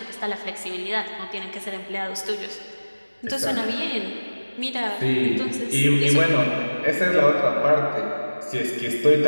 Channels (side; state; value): both; inverted; correlation -1.00